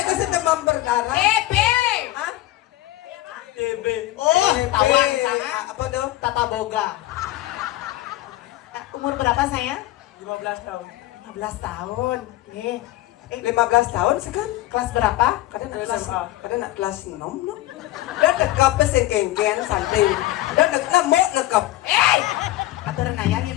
sih demam berdarah. TB. Hah? TB. Oh, tawan sana. Apa tuh? Tata Boga. Umur berapa sayang? 15 tahun. 15 tahun. Nih. 15 tahun sekan? Kelas berapa? Kadang nak kelas 6 no. Dan nekap sing kengken santai. Dan nak nekap. Aturan ayahnya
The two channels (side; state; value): right; quieter; 16.2 dB